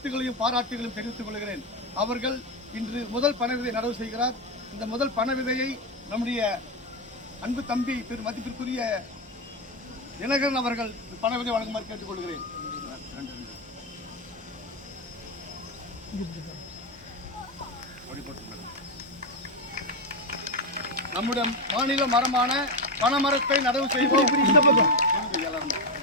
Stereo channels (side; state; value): both; normal; correlation 0.09